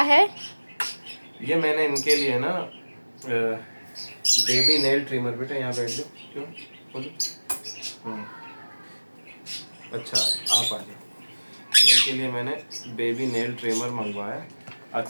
है? ये मैंने इनके लिए ना बेबी नेल ट्रिमर। बेटा यहाँ बैठ जाओ। क्यों बोलो? अच्छा आप आ जाओ। इनके लिए मैंने बेबी नेल ट्रिमर मंगवाया।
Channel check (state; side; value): inverted; both; correlation -1.00